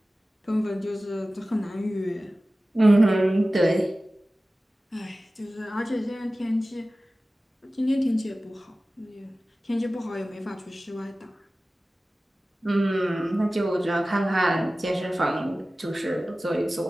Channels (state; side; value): normal; both; correlation 0.96